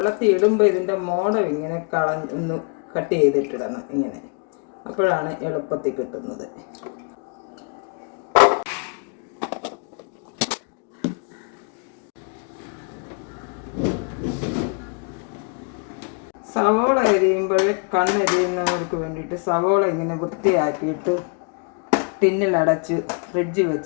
ഇടുമ്പോൾ ഇതിൻ്റെ മോടം ഇങ്ങനെ ഒന്ന് കട്ട് ചെയ്തിട്ടിടണം ഇങ്ങനെ, അപ്പോഴാണ് എളുപ്പത്തിൽ കിട്ടുന്നത്. സവോള അരിയുമ്പോൾ കണ്ണെരിയുന്നവർക്ക് വേണ്ടിയിട്ട് സവോള ഇങ്ങനെ വൃത്തിയാക്കിയിട്ട് ടിന്നിലടച്ച് ഫ്രിഡ്ജിൽ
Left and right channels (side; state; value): right; quieter; 39.3 dB